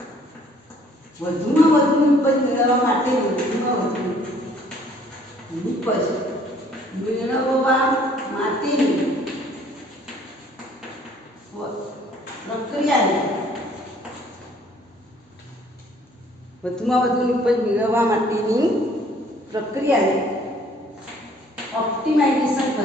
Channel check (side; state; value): both; normal; correlation 0.59